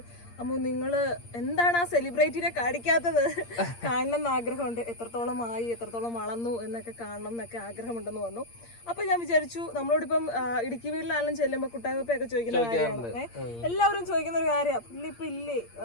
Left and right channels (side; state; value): right; late; 8.6 ms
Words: അമ്മു നിങ്ങൾ എന്താണ് ആ സെലിബ്രിറ്റിനെ കാണിക്കാത്തത്? കാണണം എന്ന് ആഗ്രഹമുണ്ട്, എത്രത്തോളം ആയി, എത്രത്തോളം വളർന്നു എന്നൊക്കെ കാണണം എന്നൊക്കെ ആഗ്രഹമുണ്ടെന്ന് പറഞ്ഞു. അപ്പോൾ ഞാൻ വിചാരിച്ചു നമ്മളോടിപ്പം ഇടുക്കി വീട്ടിലാണെങ്കിലും ചെല്ലുമ്പോൾ കുട്ടായ്മപ്പൊക്കെ ചോദിക്കുന്ന കാര്യമാണ്, എല്ലാവരും ചോദിക്കുന്ന ഒരു കാര്യമാണ്, പുള്ളി ഇപ്പൊ ഇല്ലേ,